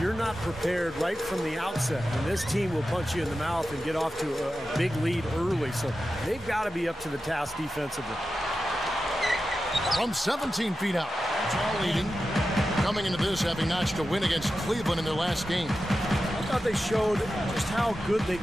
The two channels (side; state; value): both; normal; correlation 0.92